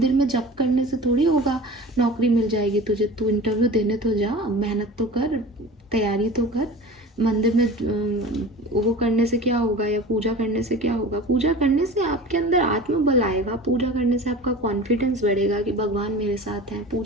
में जप करने से थोड़ी होगा नौकरी मिल जाएगी तुझे, तू इंटरव्यू देने तो जा, मेहनत तो कर, तैयारी तो कर। मंदिर में वो करने से क्या होगा, या पूजा करने से क्या होगा? पूजा करने से आपके अंदर आत्मबल आएगा, पूजा करने से आपका कॉन्फिडेंस बढ़ेगा कि भगवान मेरे साथ हैं,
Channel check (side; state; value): both; normal; correlation 0.37